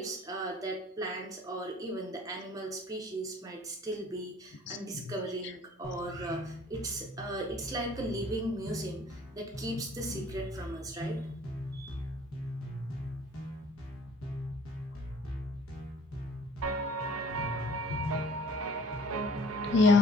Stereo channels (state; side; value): normal; both; correlation 0.53